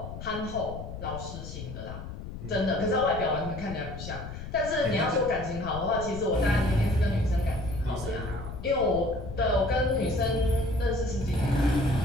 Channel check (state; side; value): noise; left; rumble, 9 dB below the sound